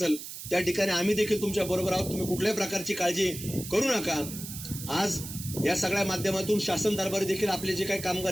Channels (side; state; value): right; noise; hiss, 10 dB below the sound